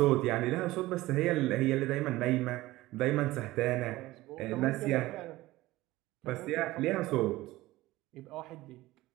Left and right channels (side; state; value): left; quieter; 17.9 dB